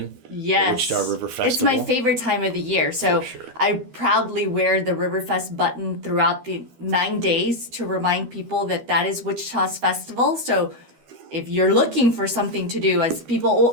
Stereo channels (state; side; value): late; left; 12 ms